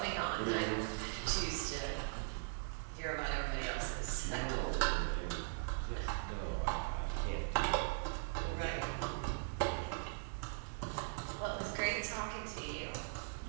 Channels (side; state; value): left; silent; digital silence